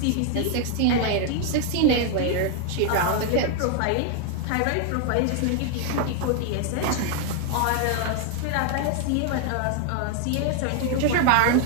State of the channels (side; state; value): both; different; correlation 0.00